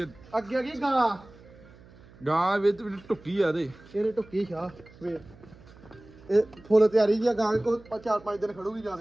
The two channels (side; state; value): right; noise; hum, 23 dB below the sound